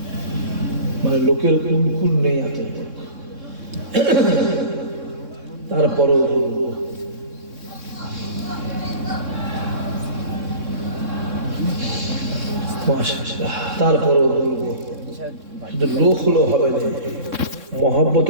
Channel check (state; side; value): late; left; 3.6 ms